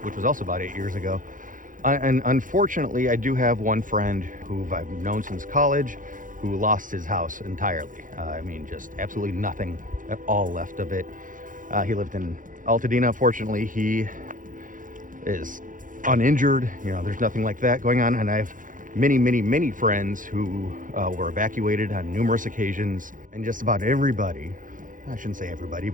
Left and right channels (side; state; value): left; late; 0.39 ms